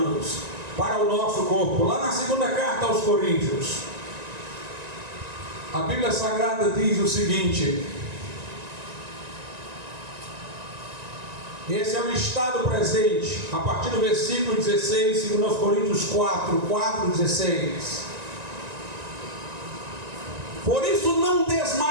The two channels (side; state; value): left; late; 1.9 ms